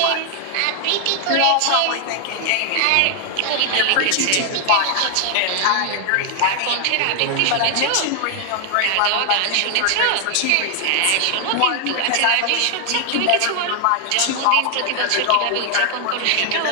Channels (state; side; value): different; both; correlation 0.00